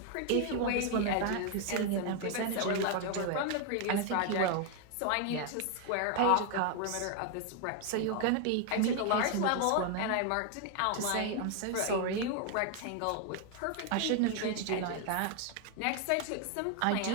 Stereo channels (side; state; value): both; different; correlation 0.01